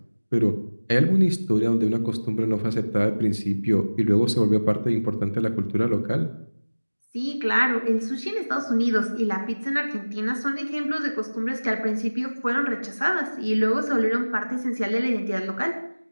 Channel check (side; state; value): both; inverted; correlation -1.00